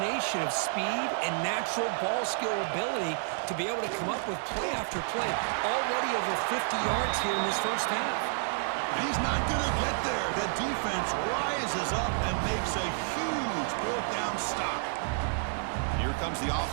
of speed and natural ball skill ability to be able to come up with play after play. Already over 50 yards here in this first half. He's not going to get there. The defense rises up and makes a huge 4th down stop. Here comes the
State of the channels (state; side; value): silent; left; digital silence